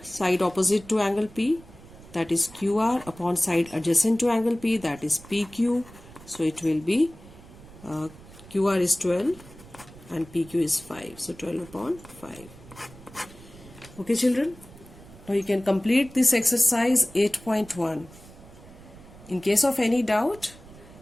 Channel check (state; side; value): noise; right; rumble, 20 dB below the sound